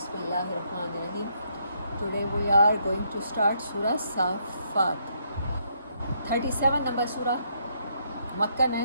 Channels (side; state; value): both; inverted; correlation -0.74